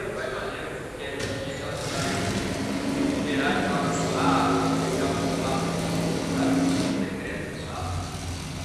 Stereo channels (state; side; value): identical; both; correlation 1.00